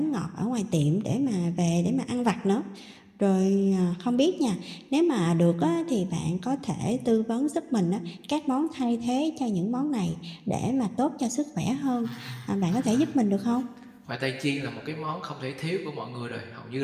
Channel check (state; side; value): identical; both; correlation 1.00